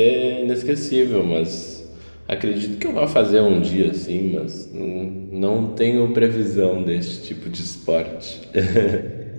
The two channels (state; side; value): inverted; both; correlation -1.00